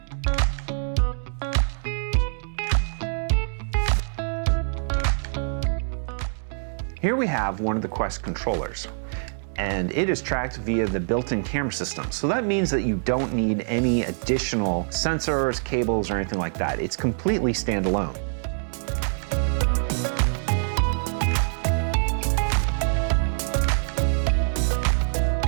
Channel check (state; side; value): silent; left; 62 dB below the other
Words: Here we have one of the Quest controllers, and it is tracked via the built-in camera system. So that means that you don't need any additional sensors, cables, or anything like that. It's completely standalone.